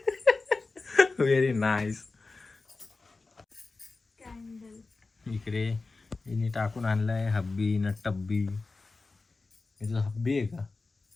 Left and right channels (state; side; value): quieter; right; 3.7 dB